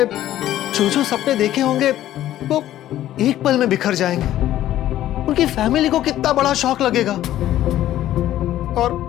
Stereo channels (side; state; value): right; quieter; 13.2 dB